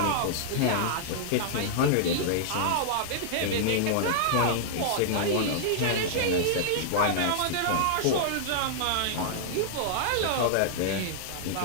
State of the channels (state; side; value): different; both; correlation -0.01